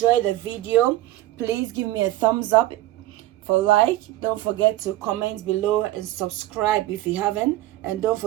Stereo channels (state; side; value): quieter; left; 15.8 dB